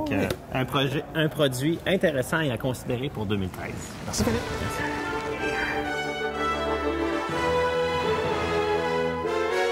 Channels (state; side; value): identical; both; correlation 1.00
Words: un produit intéressant et à considérer pour 2013. Merci, Philippe. Merci.